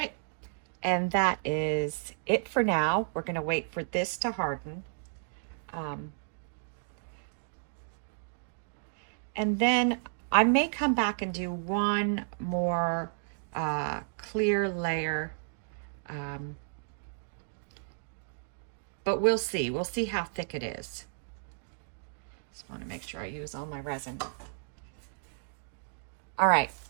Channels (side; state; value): left; silent; digital silence